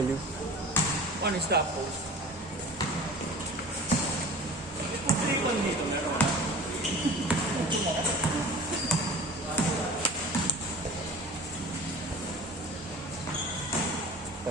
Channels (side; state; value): both; normal; correlation 0.40